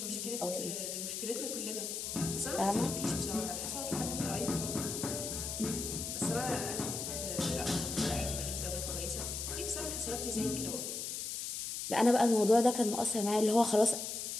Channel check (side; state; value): left; noise; hiss, 4 dB below the sound